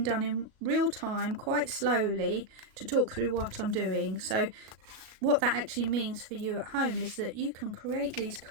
done in real time, quite slowly, to talk through what I'm doing. So what that actually means for you at home is that you can create these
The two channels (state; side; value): late; left; 37 ms